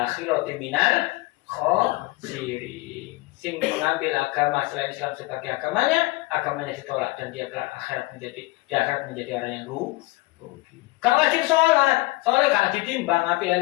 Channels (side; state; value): right; quieter; 21.7 dB